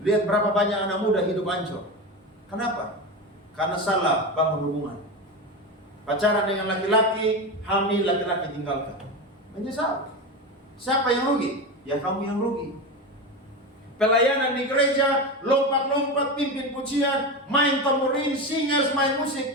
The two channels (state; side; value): normal; both; correlation 0.21